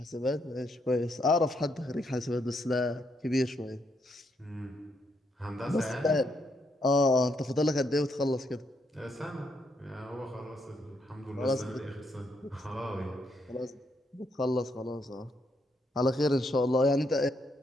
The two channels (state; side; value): normal; both; correlation 0.76